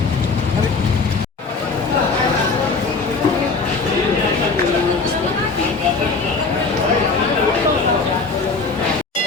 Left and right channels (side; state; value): right; quieter; 4.2 dB